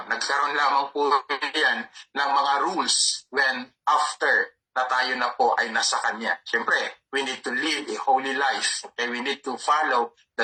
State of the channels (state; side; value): identical; both; correlation 1.00